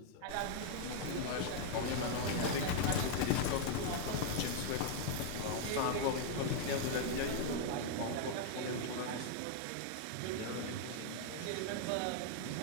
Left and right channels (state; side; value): different; both; correlation 0.00